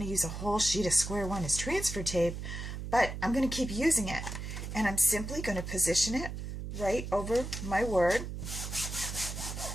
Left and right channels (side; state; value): right; noise; hum, 6 dB below the sound